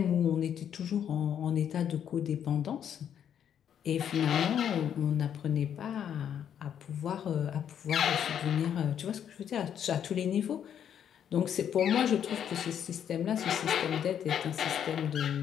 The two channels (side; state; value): right; quieter; 9.0 dB